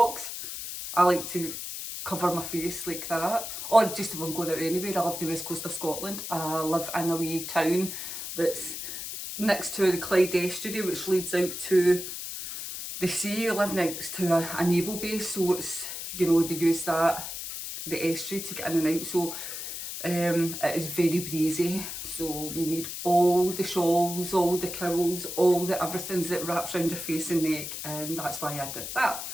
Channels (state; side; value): noise; left; hiss, 7 dB below the sound